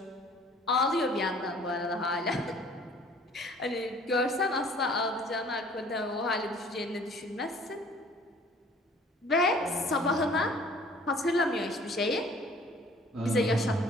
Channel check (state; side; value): normal; both; correlation 0.53